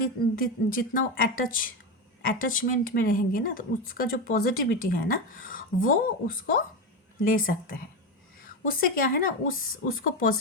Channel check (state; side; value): normal; both; correlation 0.15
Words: जितना वो अटैचमेंट में रहेंगे ना, तो उसका जो पॉजिटिविटी है ना वो उसको ले सकते हैं। उससे क्या है ना, उसको